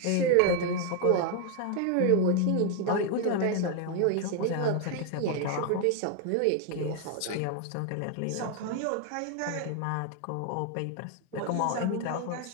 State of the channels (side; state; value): both; different; correlation 0.00